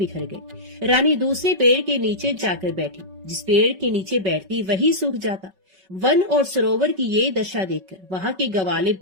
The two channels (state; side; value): late; left; 5.3 ms